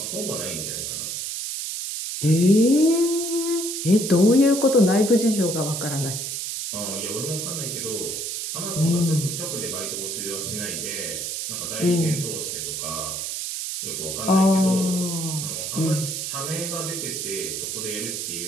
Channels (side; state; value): right; noise; hiss, 4 dB below the sound